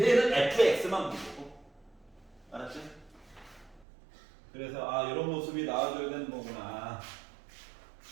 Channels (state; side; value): drops out; left; at 3.9 s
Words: fx만 보고, 알았지? 그래서 아, 이런 모습이 나와줘야 되는 거구나.